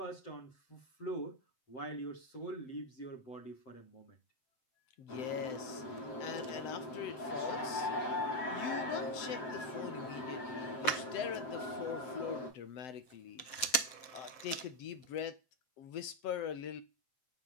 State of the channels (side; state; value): right; late; 7.8 ms